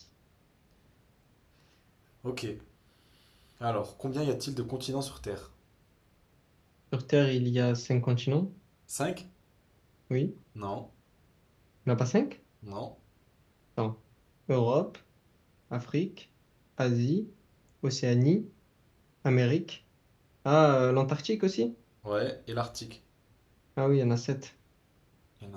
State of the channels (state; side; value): identical; both; correlation 1.00